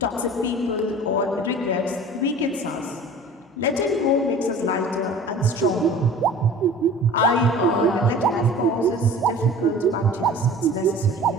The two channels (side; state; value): both; normal; correlation 0.42